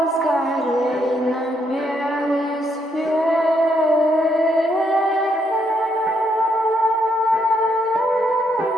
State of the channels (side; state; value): both; normal; correlation 0.75